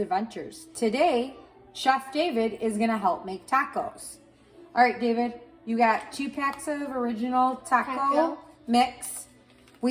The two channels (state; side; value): identical; both; correlation 1.00